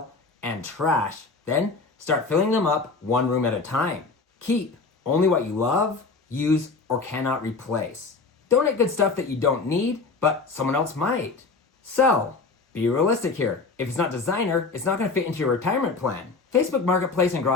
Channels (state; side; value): quieter; right; 4.2 dB